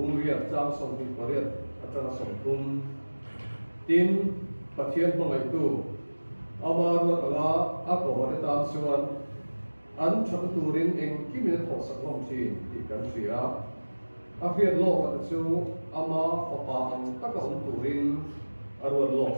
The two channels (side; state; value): both; inverted; correlation -1.00